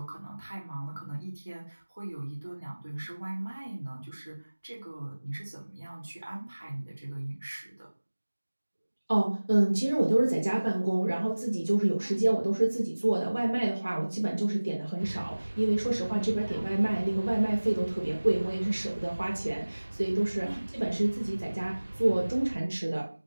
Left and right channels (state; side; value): inverted; both; correlation -1.00